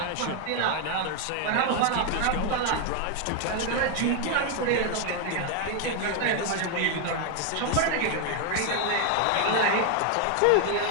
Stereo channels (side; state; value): both; different; correlation 0.01